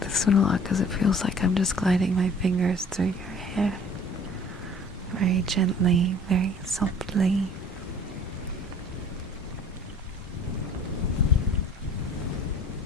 this one a lot because it feels like I'm just gliding my fingers through your hair. Very gently, very softly.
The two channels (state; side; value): normal; both; correlation 0.49